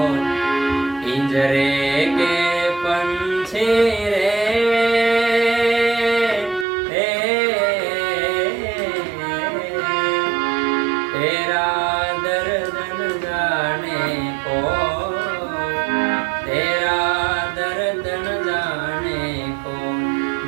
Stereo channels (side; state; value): left; drops out; at 6.7 s